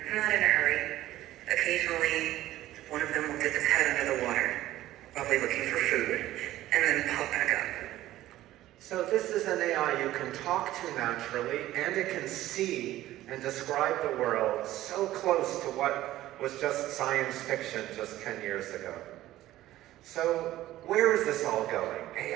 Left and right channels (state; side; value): quieter; left; 14.8 dB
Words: not in a hurry. Occasionally, one of them will dip its head under the water, probably looking for food, and then pop back up. So this is an AI you can talk to naturally, and it can see and describe the world so close to what was just science fiction just 10 years ago. So where is this all going?